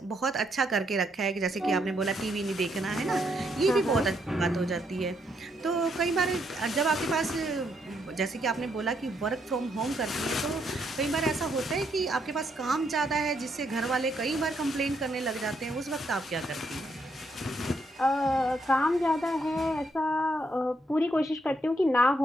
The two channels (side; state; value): both; normal; correlation 0.75